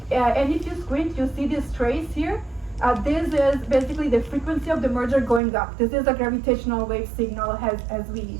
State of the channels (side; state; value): left; drops out; at 5.4 s